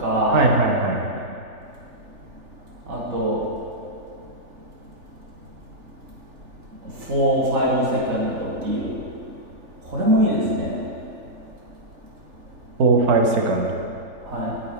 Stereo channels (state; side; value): late; left; 3.4 ms